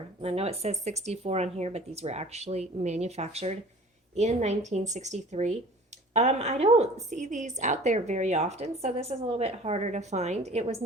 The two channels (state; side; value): normal; both; correlation 0.46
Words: I know it says 64 on here, but these were actually manufactured in 1963. I don't see these out there very often, so this is a little bit harder to find. It was